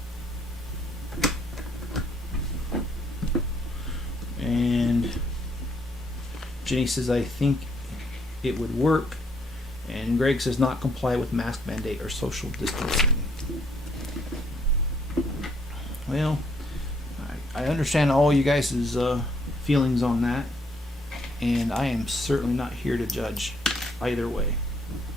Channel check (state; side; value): normal; both; correlation 0.69